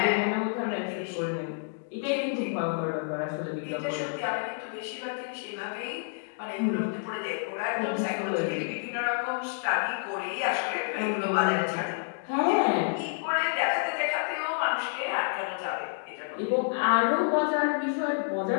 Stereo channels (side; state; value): right; silent; digital silence